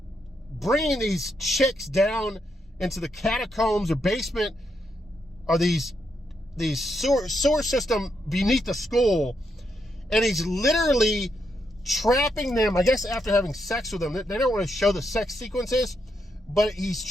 bringing these chicks down into the catacombs or basement, or these sewer system beneath the school, and he's literally trapping them, I guess after having sex with them. They don't want to show the sex sequences, but he's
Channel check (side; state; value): both; normal; correlation 0.80